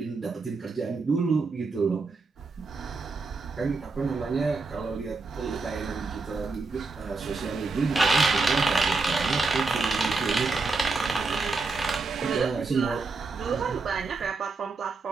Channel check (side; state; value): left; quieter; 3.8 dB